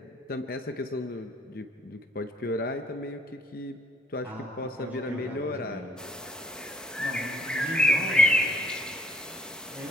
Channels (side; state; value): both; normal; correlation 0.61